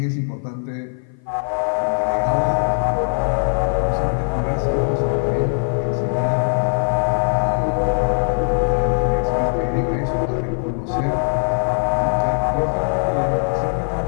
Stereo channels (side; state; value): right; silent; 55 dB below the other